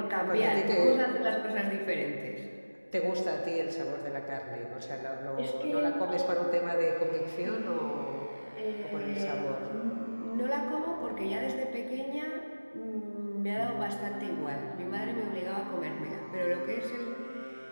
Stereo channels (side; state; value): both; inverted; correlation -1.00